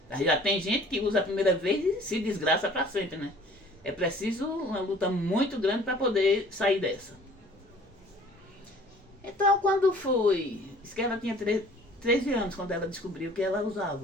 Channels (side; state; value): both; normal; correlation 0.51